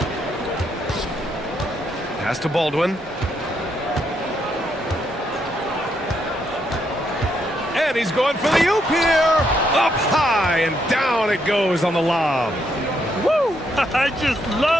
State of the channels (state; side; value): normal; both; correlation 0.76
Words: Pass to Baldwin. And he's going for the oop here. Up high and down it goes on the lob. Woo! I just